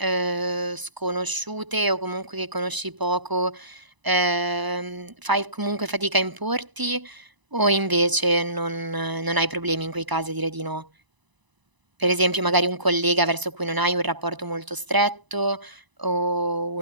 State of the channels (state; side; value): late; left; 1.0 ms